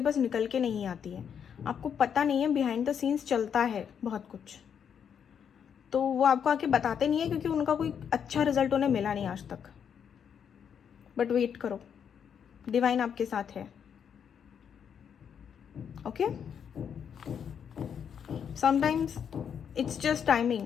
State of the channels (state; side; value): quieter; right; 7.8 dB